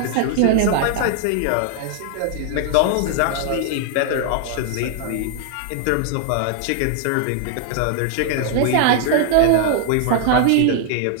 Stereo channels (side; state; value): both; different; correlation 0.00